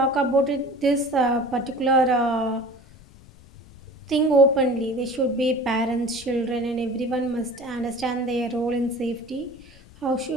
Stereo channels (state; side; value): noise; left; rumble, 23 dB below the sound